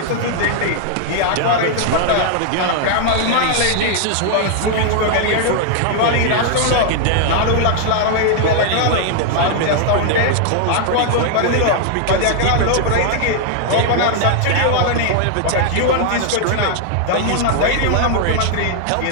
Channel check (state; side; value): different; both; correlation 0.00